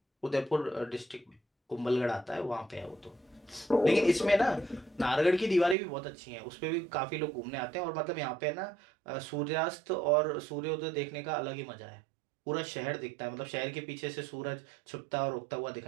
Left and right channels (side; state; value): left; drops out; at 5.8 s